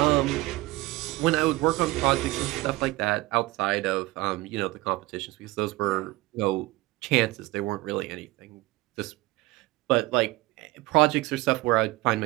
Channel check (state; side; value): quieter; left; 20.2 dB